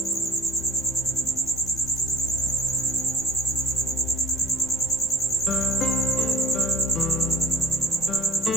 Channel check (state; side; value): normal; both; correlation 0.49